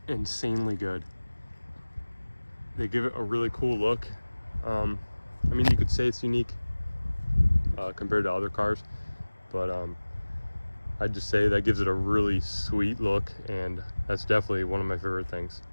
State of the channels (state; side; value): inverted; both; correlation -1.00